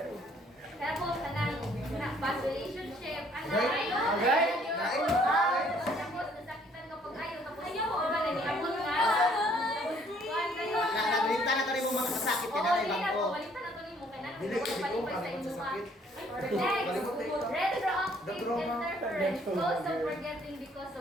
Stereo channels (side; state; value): both; normal; correlation 0.62